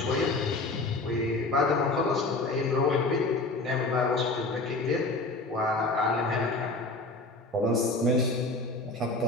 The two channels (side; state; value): right; quieter; 3.1 dB